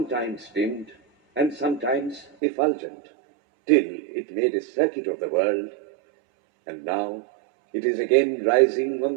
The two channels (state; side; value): drops out; left; at 2.4 s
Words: dimmed and sometimes effulgent, till it made a circuit of the world, and now it is again rising on